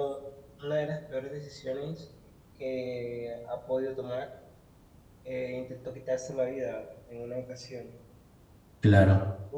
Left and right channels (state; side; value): identical; both; correlation 1.00